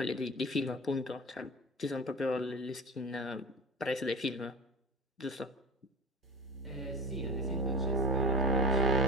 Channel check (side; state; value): both; normal; correlation 0.34